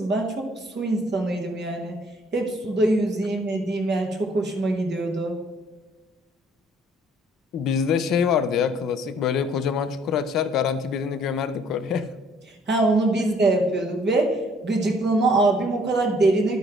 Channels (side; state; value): both; normal; correlation 0.61